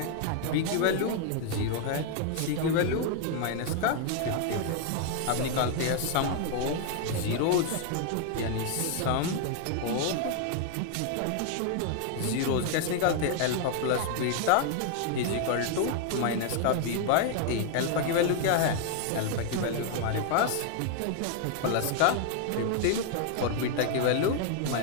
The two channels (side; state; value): both; different; correlation 0.00